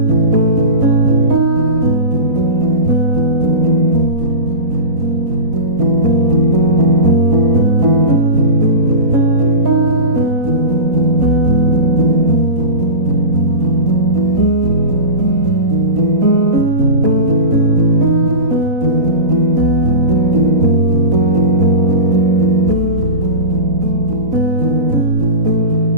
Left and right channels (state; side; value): late; left; 4.0 ms